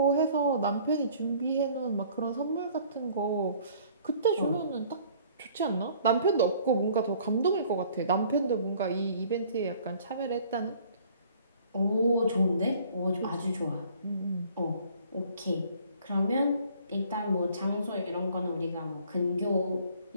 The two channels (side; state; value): both; inverted; correlation -0.55